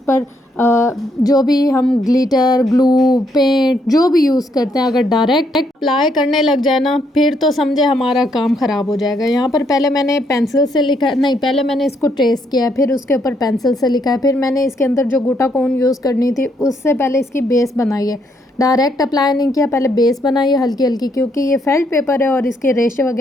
जो भी हम ग्लिटर, ग्लू, पेंट जो भी यूज़ करते हैं, अगर डायरेक्ट अप्लाई करने लग जाए ना फिर तो समझे हमारा काम ख़राब हो जाएगा। यहाँ पर पहले मैंने पेंसिल से लिखा नहीं, पहले मैंने इसको ट्रेस किया है, फिर उसके ऊपर पेंसिल से लिखा है, फिर मैंने इसके अंदर जो गोटा कोन यूज़ करनी थी उससे पहले इसकी बेस बनाई है। डायरेक्ट अप्लाई नहीं किया, पहले बेस बनाई है हल्की क्योंकि ये फेल्ट पेपर है और इसके रेशे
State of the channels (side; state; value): both; normal; correlation 0.73